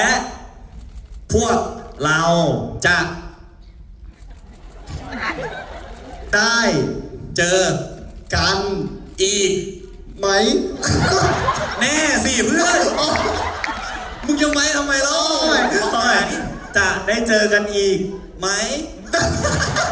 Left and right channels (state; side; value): identical; both; correlation 1.00